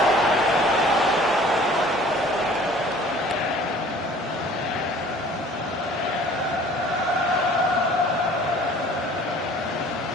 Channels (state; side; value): normal; both; correlation 0.50